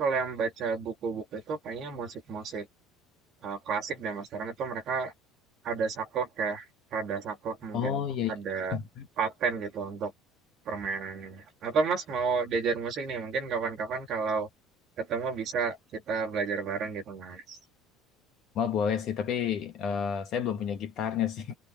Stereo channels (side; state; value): both; normal; correlation 0.48